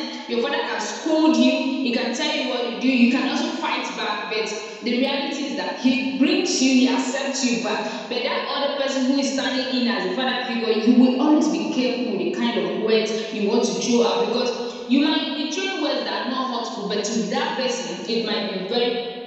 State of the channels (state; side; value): identical; both; correlation 1.00